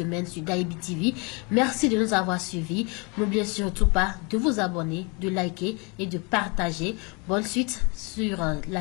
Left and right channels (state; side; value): quieter; right; 30.9 dB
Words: sur Daibi TV. Merci de nous avoir suivis. N'oubliez surtout pas de vous abonner, de liker et de partager. Bonne suite sur la